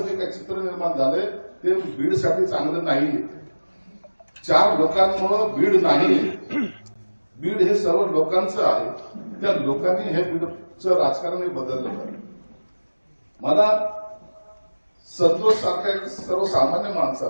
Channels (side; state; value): both; inverted; correlation -1.00